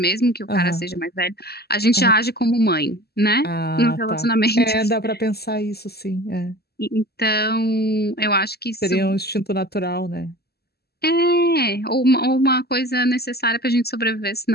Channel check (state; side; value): late; right; 0.46 ms